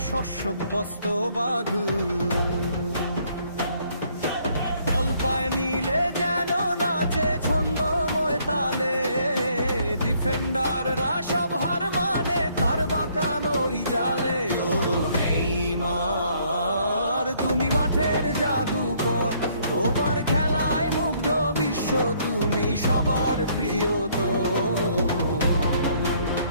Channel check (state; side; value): inverted; both; correlation -0.65